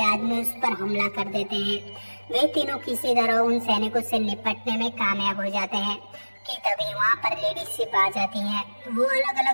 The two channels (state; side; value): inverted; both; correlation -1.00